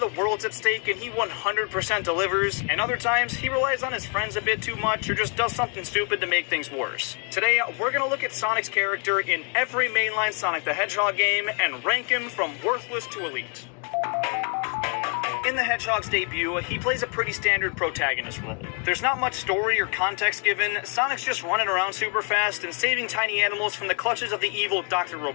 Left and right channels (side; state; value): right; quieter; 38.5 dB